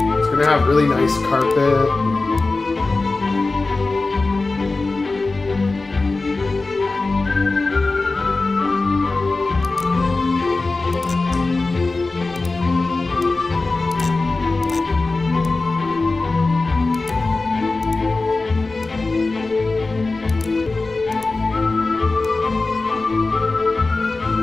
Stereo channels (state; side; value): quieter; right; 3.5 dB